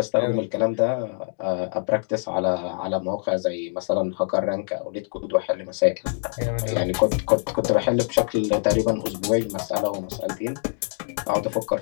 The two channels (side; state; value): right; silent; 62 dB below the other